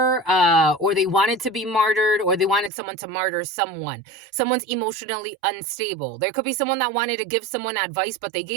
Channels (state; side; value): drops out; left; at 2.7 s